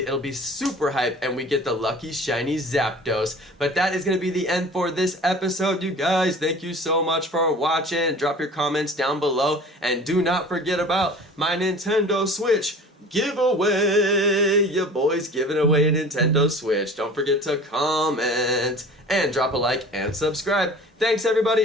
be super hype and we get the lucky shiny ZAPDOS. But that is going to be the end for this episode, you guys. Thank you so much for watching. Drop your comments down below, and do not forget about my Nintendo Switch giveaway. Your boy's giving away a Nintendo Switch. Don't forget to comment and drop a like and subscribe. Thanks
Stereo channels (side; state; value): both; normal; correlation 0.42